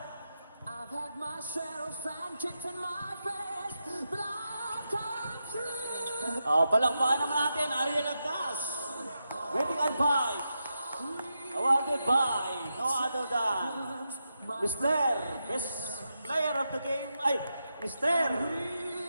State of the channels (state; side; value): inverted; both; correlation -0.87